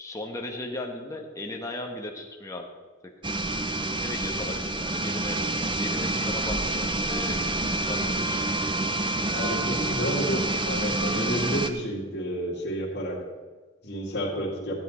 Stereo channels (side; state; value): both; normal; correlation 0.19